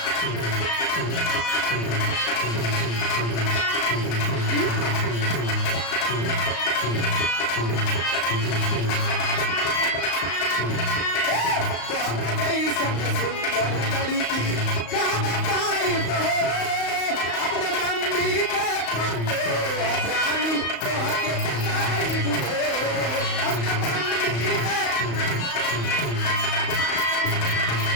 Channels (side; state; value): right; late; 35 ms